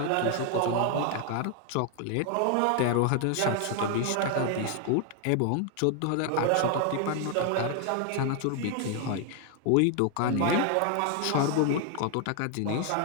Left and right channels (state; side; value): different; both; correlation 0.00